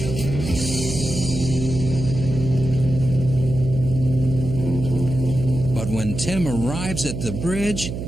But when Tim arrives at the bridge,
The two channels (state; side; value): noise; right; hum, 6 dB below the sound